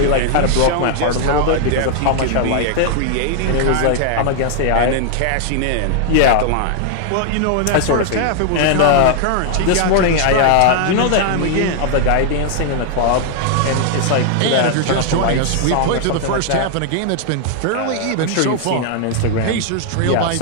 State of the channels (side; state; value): both; different; correlation 0.00